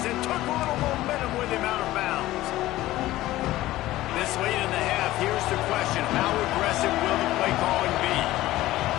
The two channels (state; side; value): quieter; right; 16.2 dB